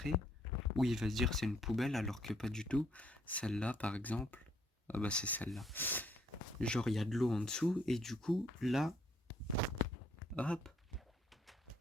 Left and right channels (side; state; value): both; normal; correlation 0.68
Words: Ou il va se dire c'est une poubelle alors que pas du tout. Celle-là par exemple. Ah bah c'est celle-là. Genre il y a de l'eau en dessous et du coup là. Hop.